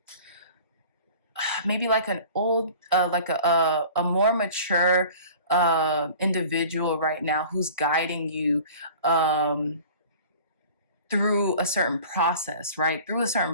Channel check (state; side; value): inverted; both; correlation -0.44